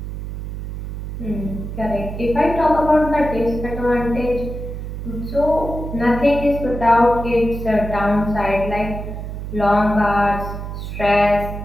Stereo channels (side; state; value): right; noise; hum, 7 dB below the sound